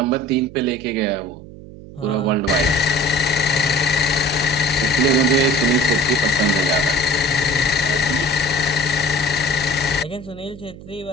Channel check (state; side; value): noise; right; hum, 16 dB below the sound